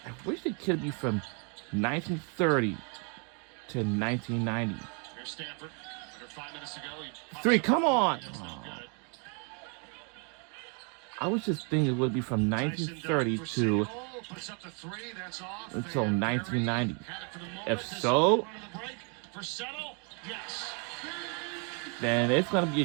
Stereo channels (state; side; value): quieter; left; 37.0 dB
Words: I wish they could be from 1930 to 1990. Here's Stanford. Under 5 minutes to go. He 3, come on! That's not good. I was just thinking it would be from 1930 Tyson to Doe puts up the 3. That's off. until And 1990. Barry had it for the moment. If This so, is the break for Settle. Yes. then it's gonna be a